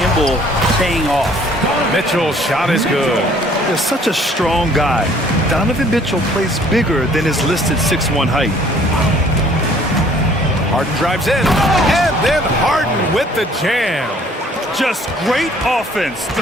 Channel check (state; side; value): normal; both; correlation 0.57